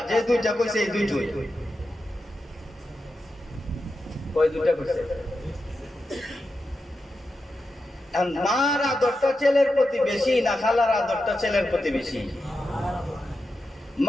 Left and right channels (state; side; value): normal; both; correlation 0.89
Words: যে 2টা কইছে এই 2টোই। কয় 2টা কইছে? মার আদরটা ছেলের প্রতি বেশি না খালার আদরটা ছেলের প্রতি বেশি?